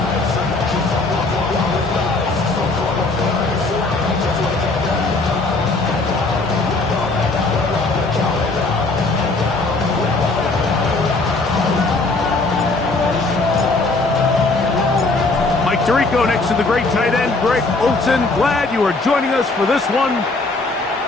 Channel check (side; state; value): right; quieter; 3.4 dB